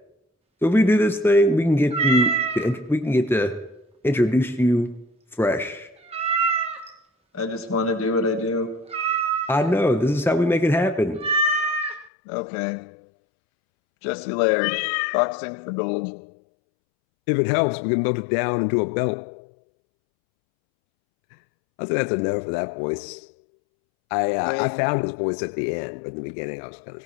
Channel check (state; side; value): drops out; right; at 12.1 s